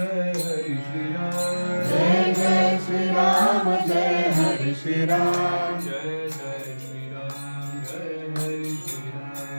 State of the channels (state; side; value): inverted; both; correlation -1.00